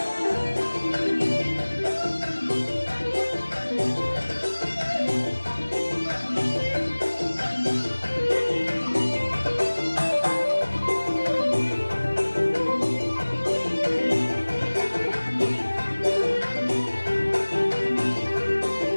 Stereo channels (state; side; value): inverted; both; correlation -1.00